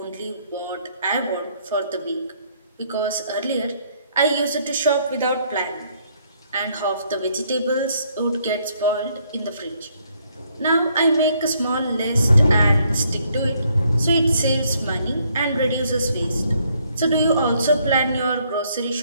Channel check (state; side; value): inverted; both; correlation -0.69